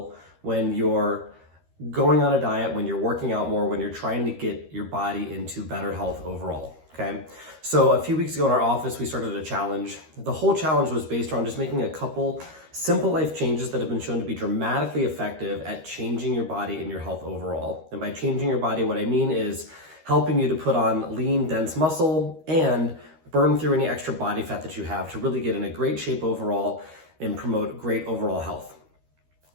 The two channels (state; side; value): late; left; 13 ms